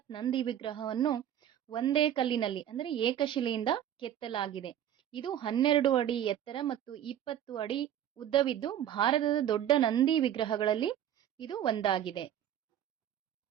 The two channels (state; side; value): quieter; left; 10.6 dB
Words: ನಂದಿ ವಿಗ್ರಹವನ್ನು ಒಂದೇ ಕಲ್ಲಿನಲ್ಲಿ, ಅಂದರೆ ಏಕಶಿಲೆಯಿಂದ ಕೆತ್ತಲಾಗಿದೆ. ಇದು 12 ಅಡಿ ಎತ್ತರ ಮತ್ತು 20 ಅಡಿ ಉದ್ದವಿದ್ದು ಭಾರತದ ದೊಡ್ಡ ನಂದಿ ವಿಗ್ರಹಗಳಲ್ಲಿ ಇದು ಒಂದಾಗಿದೆ.